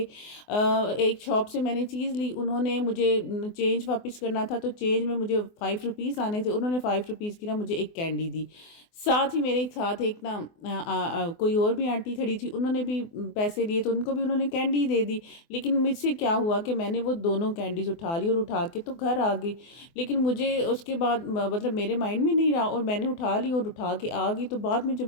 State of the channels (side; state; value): right; late; 24 ms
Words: ایک شاپ سے میں نے چیز لی، انہوں نے مجھے چینج واپس کرنا تھا، تو چینج میں مجھے 5 روپیز آنے تھے، انہوں نے 5 روپیز کی نا مجھے ایک کینڈی دی، ساتھ ہی میرے ساتھ ایک نا کوئی اور بھی آنٹی کھڑی تھی، انہوں نے بھی پیسے لیے تو ان کو بھی انہوں نے کینڈی دے دی، لیکن مجھ سے کیا ہوا کہ میں نے وہ دونوں کینڈیز اٹھا لی اور اٹھا کے تو گھر آ گئی، لیکن مجھے اس کے بعد مطلب میرے مائنڈ میں نہیں رہا، اور میں نے اٹھا لی اور اٹھا کے آ گئی، تو بعد میں جب